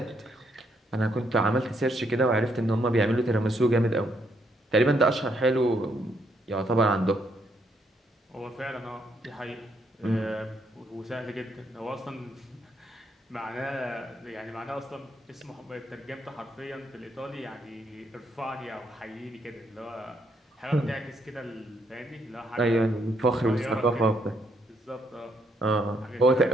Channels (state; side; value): normal; both; correlation 0.73